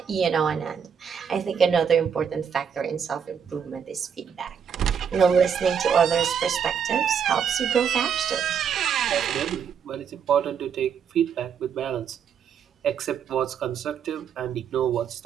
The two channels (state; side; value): quieter; left; 7.4 dB